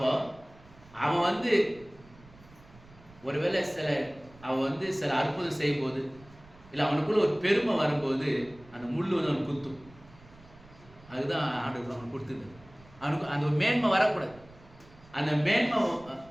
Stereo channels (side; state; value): right; noise; rumble, 24 dB below the sound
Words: அவன் ஒருவேளை அவன் சில அற்புதம் செய்யும் போது, இல்லை அவனுக்குள்ள ஒரு பெருமை வரும்போது அந்த முள் அவனுக்கு குத்தும். அதுதான் ஆண்டவர் அவனுக்கு கொடுத்தது. அவனுக்கு அந்த ஒரு மேன்மை வரக்கூடாது. அந்த மேன்மை